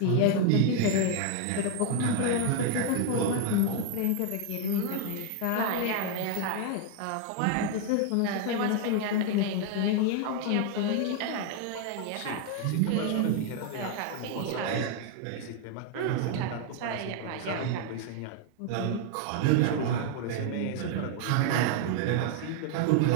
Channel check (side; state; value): both; different; correlation 0.01